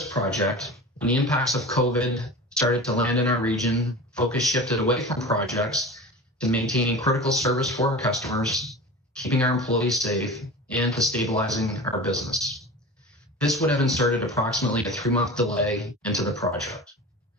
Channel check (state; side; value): normal; both; correlation 0.33